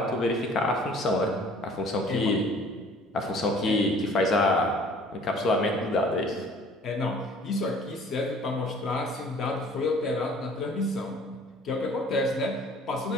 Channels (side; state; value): both; normal; correlation 0.52